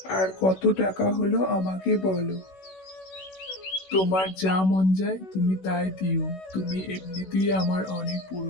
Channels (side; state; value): right; late; 16 ms